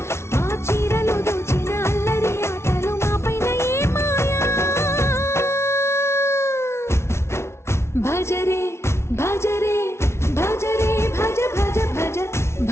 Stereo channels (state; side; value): late; right; 0.13 ms